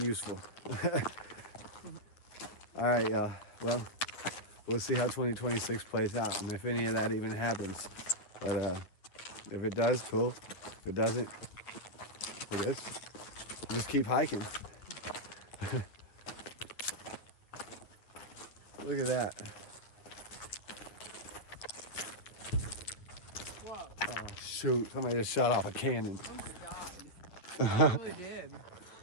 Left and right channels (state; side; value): late; right; 9.3 ms